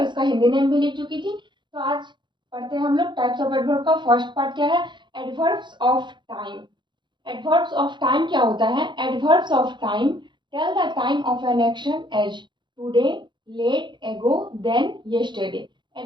इसका हिंदी नेम भी लिख चुकी थी। तो आज पढ़ते हैं हम लोग टाइप्स ऑफ एडवर्ब का। फर्स्ट पार्ट क्या है? Adverbs of time. Adverbs of time क्या होता है? Adverbs of time tell the time of an action as today, late, ago, then, yesterday.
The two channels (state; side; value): late; left; 0.23 ms